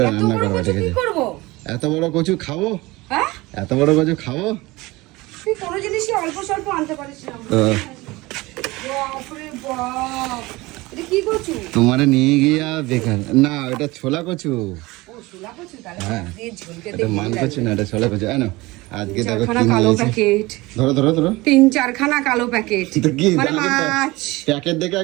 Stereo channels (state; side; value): quieter; left; 21.3 dB